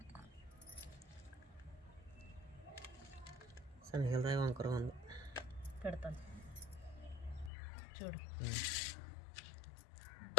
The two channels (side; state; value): right; drops out; at 7.5 s